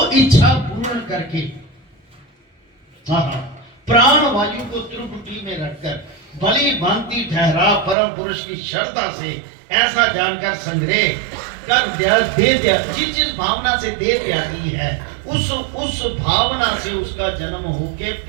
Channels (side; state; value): left; drops out; at 8.0 s